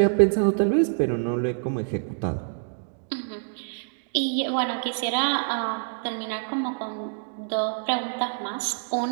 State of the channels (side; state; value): left; silent; digital silence